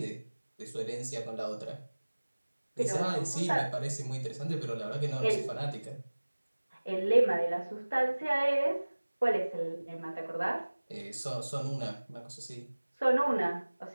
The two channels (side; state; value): both; inverted; correlation -1.00